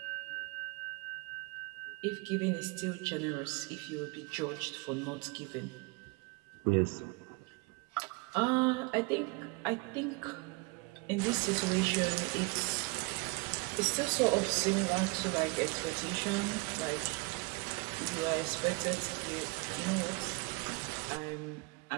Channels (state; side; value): quieter; left; 29.1 dB